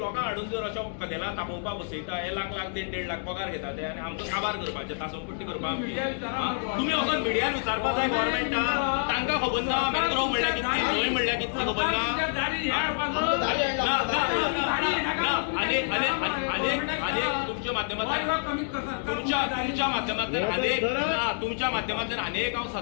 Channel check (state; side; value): silent; right; digital silence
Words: हाडून जर अशा कदेला तापोवपाक बसयता हे लाख 1.5 लाख पगार घेता ते आनी आमचो काबार करपाचे तासमपट्टी करपाक तुम्ही वचून मिडियान विचारपाक जाय गव्हर्मेंटाक तांकां खबर ना मॅनग्रोव म्हणल्यार कितें न्हंय म्हणल्यार कितें खबर ना तुमच्या माध्यमांतल्यान अनेक हांव